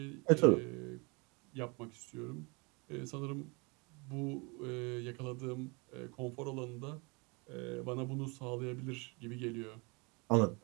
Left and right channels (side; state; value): left; quieter; 29.6 dB